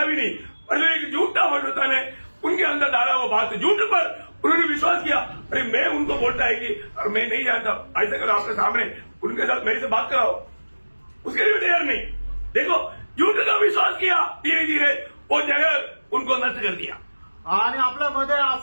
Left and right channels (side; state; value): both; inverted; correlation -1.00